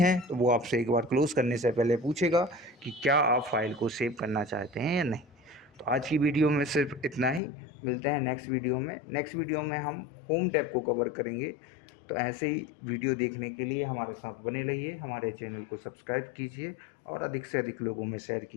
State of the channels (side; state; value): right; drops out; at 7.4 s